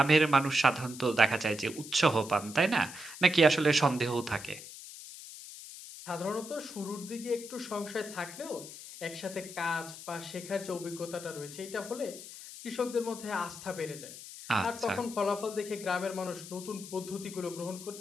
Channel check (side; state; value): left; noise; hiss, 13 dB below the sound